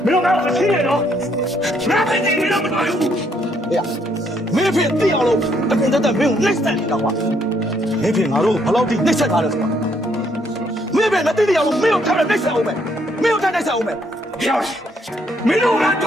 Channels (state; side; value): normal; both; correlation 0.71